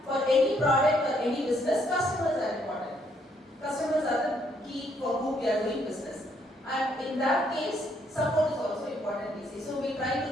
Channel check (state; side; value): normal; both; correlation 0.70